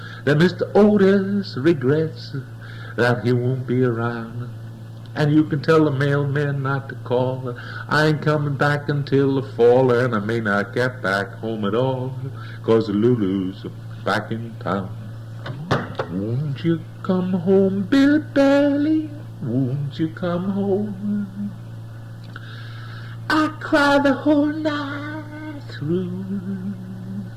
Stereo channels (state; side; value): identical; both; correlation 1.00